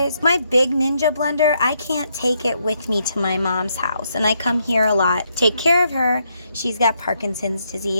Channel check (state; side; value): inverted; both; correlation -0.77